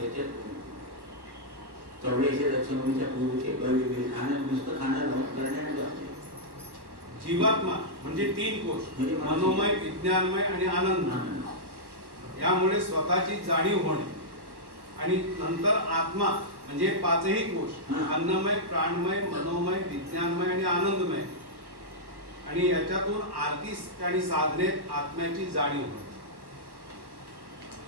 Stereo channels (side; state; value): left; late; 1.1 ms